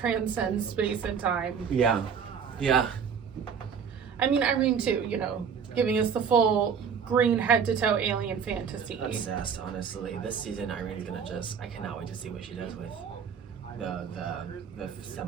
space and time. Yeah. Yeah. I mean, Irene too, giving us the full green head to toe alien fantasy. Obsessed, honestly. This season, Irene's gonna I cannot wait to see what she does with the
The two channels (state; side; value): quieter; left; 6.8 dB